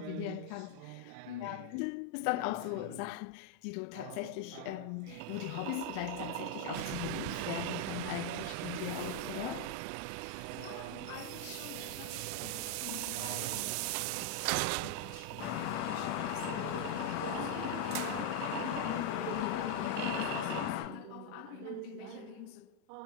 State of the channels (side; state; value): both; different; correlation 0.00